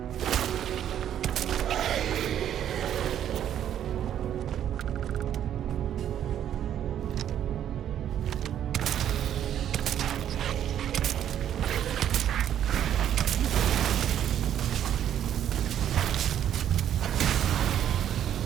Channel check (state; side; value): quieter; left; 10.3 dB